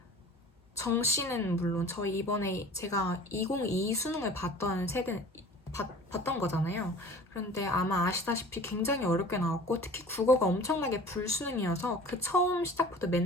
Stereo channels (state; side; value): normal; both; correlation 0.43